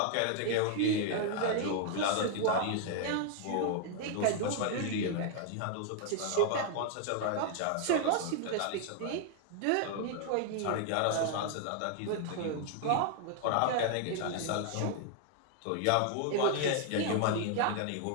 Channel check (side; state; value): both; different; correlation 0.00